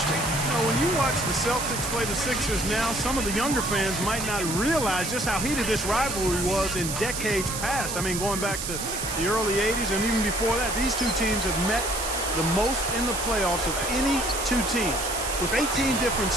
You know, when you watch the Celtics play the Sixers now, some of the younger fans might not realize just how heated this rivalry was in decades past. I mean, going back to the early 80s and even before that, these two teams have met the most in the playoffs of any two teams with 18 different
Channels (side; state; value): right; noise; hiss, 5 dB below the sound